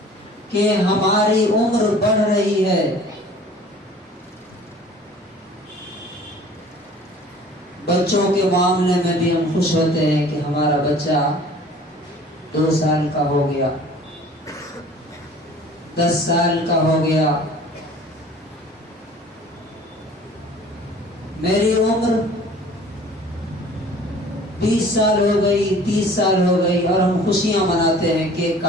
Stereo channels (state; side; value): normal; both; correlation 0.48